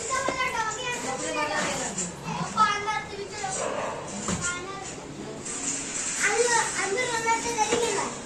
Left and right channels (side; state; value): both; identical; correlation 1.00